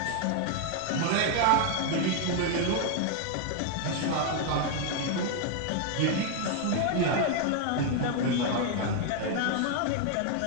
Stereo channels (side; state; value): both; different; correlation 0.01